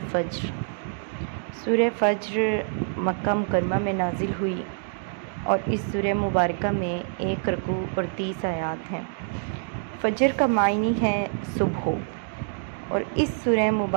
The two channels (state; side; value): silent; left; digital silence